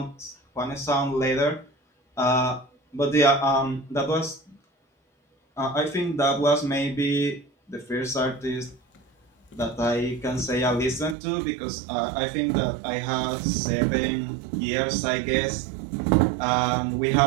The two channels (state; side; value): drops out; left; at 11.2 s